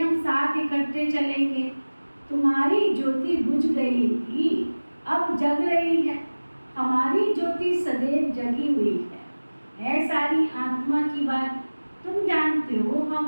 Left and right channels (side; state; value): both; inverted; correlation -1.00